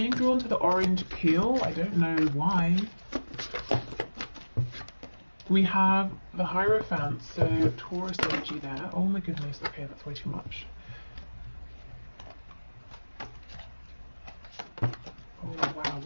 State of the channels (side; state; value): both; inverted; correlation -1.00